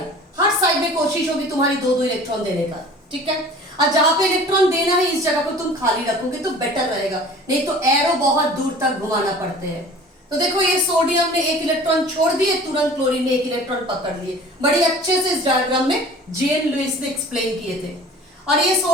हर साइड में कोशिश होगी तुम्हारी 2-2 इलेक्ट्रॉन देने का, ठीक है। और जहां पे इलेक्ट्रॉन देना है इस जगह को तुम खाली रखोगे तो बेटर रहेगा, नहीं तो एरो बहुत दूर तक घुमाना पड़ते हैं। तो देखो ये सोडियम ने एक इलेक्ट्रॉन छोड़ दिए, तुरंत क्लोरीन ने एक इलेक्ट्रॉन पकड़ लिए। बड़ी अच्छे से इस डायग्राम में G.N. लुईस ने एक्सप्लेन किए थे। और ये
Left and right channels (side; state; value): both; normal; correlation 0.44